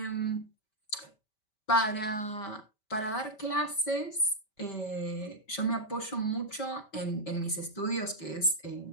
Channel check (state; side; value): late; right; 5.1 ms